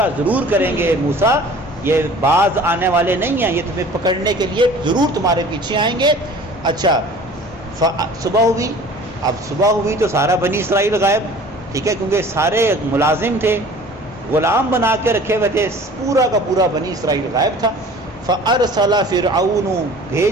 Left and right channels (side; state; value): both; normal; correlation 0.46